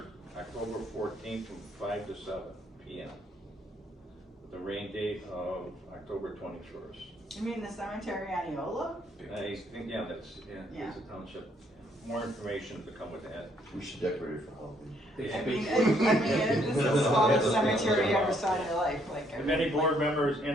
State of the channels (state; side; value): normal; both; correlation 0.69